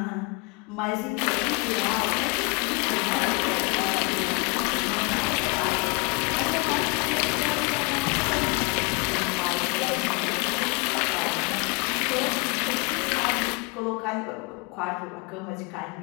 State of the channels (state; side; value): quieter; right; 29.5 dB